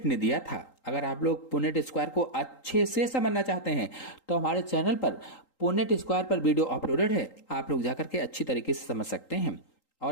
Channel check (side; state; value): right; late; 3.8 ms